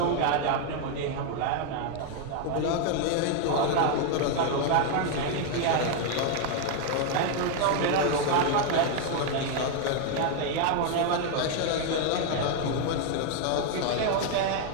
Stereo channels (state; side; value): different; both; correlation 0.00